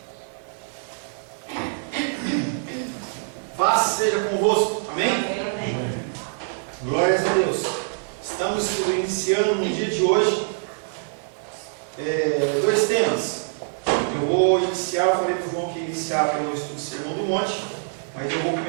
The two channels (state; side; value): silent; left; digital silence